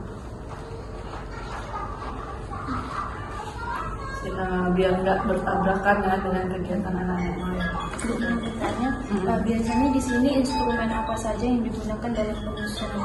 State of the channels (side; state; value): both; identical; correlation 1.00